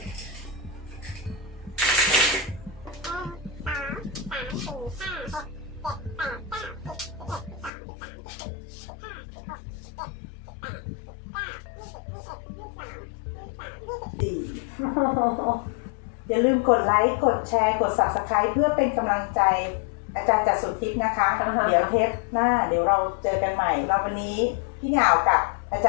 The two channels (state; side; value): drops out; right; at 7.7 s